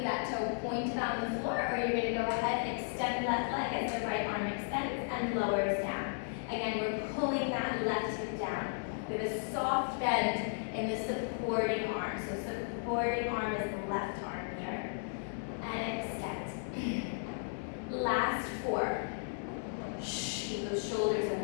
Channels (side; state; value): right; silent; 55 dB below the other